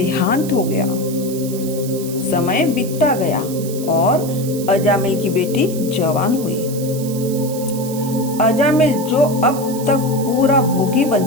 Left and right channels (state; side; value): noise; right; hiss, 13 dB below the sound